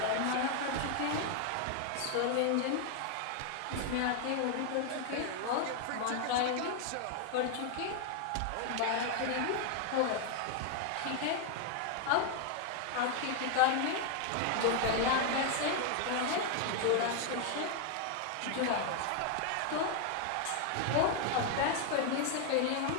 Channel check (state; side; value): different; both; correlation 0.00